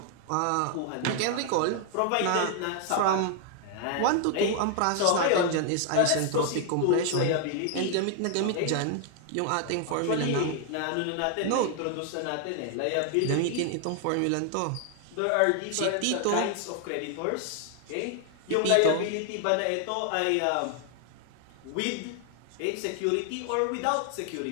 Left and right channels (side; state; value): both; different; correlation 0.00